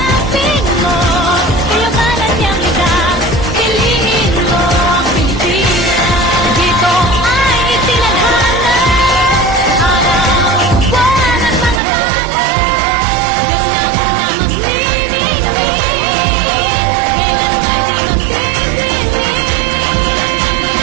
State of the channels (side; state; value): left; drops out; at 11.8 s